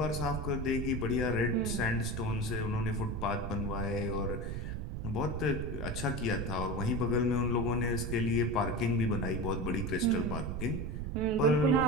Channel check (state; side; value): noise; right; rumble, 4 dB below the sound